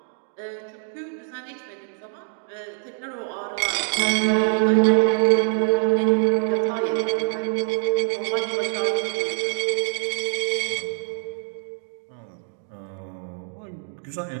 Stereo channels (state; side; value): silent; left; 59 dB below the other